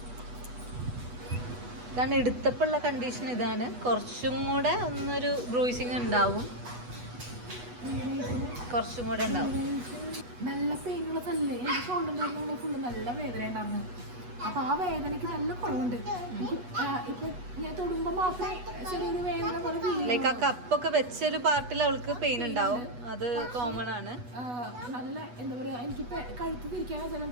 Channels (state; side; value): late; left; 8.2 ms